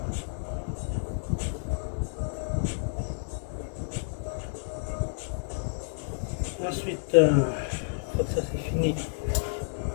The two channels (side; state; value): right; silent; digital silence